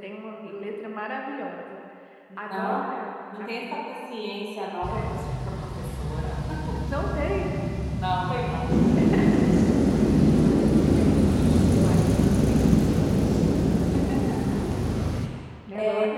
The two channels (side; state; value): both; identical; correlation 1.00